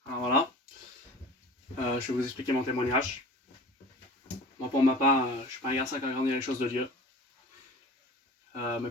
Alors voilà, je vais vous expliquer mon témoignage. Moi pour ma part, je suis pas un garçon qui a grandi dans les choses de Dieu. Mes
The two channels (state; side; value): normal; both; correlation 0.39